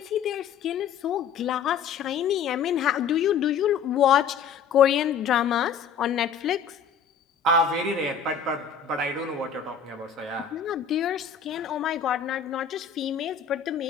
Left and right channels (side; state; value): right; quieter; 6.9 dB